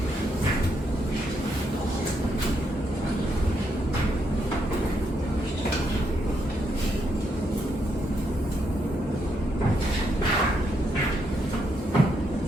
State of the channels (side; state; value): both; normal; correlation 0.78